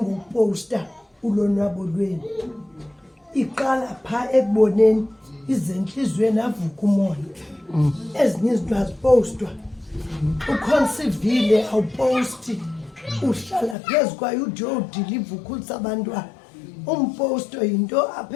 ulonwabo lwenu iqala pha ekuboneni izenhliziyweni avuka umoya ezinye izinto azipostwa ukhonsivile awuposti uhlala phezu kwayo ude uyodiliva ukhulisa abantwana umposto yinto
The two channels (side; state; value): right; drops out; at 13.8 s